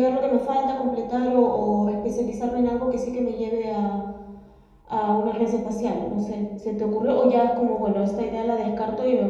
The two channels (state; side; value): identical; both; correlation 1.00